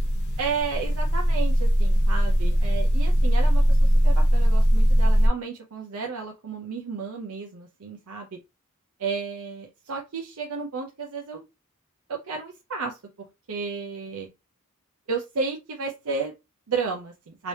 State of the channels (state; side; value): normal; both; correlation 0.85